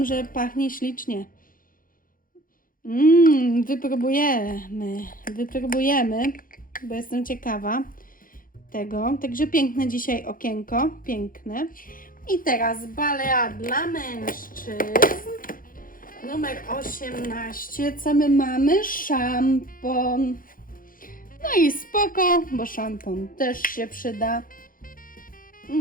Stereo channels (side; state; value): right; late; 0.40 ms